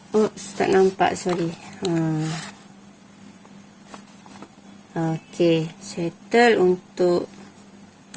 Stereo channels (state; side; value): identical; both; correlation 1.00